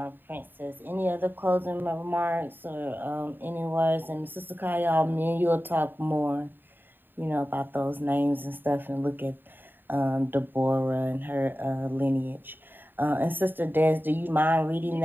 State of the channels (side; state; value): left; late; 0.094 ms